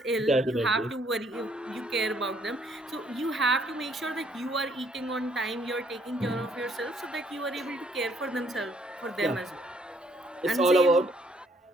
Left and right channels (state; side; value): normal; both; correlation 0.66